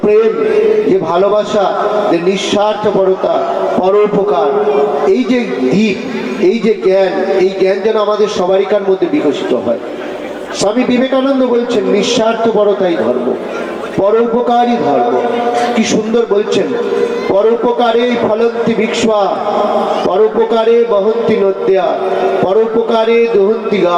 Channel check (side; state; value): both; identical; correlation 1.00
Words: প্রেম, যে ভালোবাসা, যে নিঃস্বার্থপরতা, পরোপকার, এই যে দিক, এই যে জ্ঞান, এই জ্ঞান যেন আমাদের সবারিকার মধ্যে বিকশিত হয়। স্বামী বিবেকানন্দ বলছেন নিঃস্বার্থপরতাই ধর্ম, পরোপকারই ধর্ম। কি সুন্দর বলছেন, পরোপকারে ফলন্তি বিক্ষ্বা, পরোপকারে বহন্তি নদ্যা, পরোপকারে দহন্তি